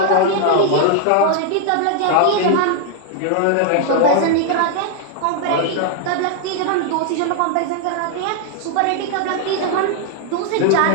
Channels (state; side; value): different; both; correlation 0.00